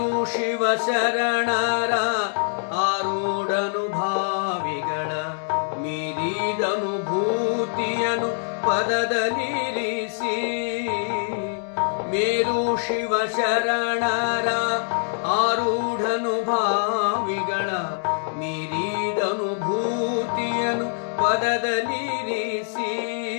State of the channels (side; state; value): right; silent; digital silence